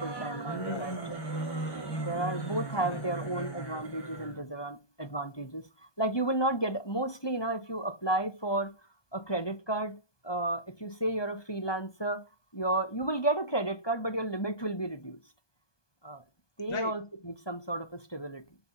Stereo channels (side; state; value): right; late; 1.2 ms